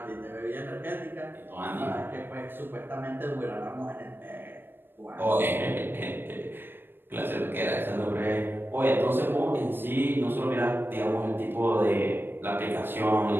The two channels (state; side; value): late; left; 0.098 ms